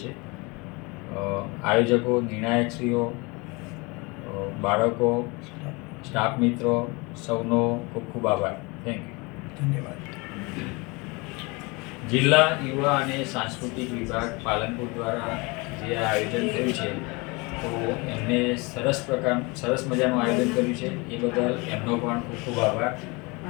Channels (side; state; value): right; quieter; 27.1 dB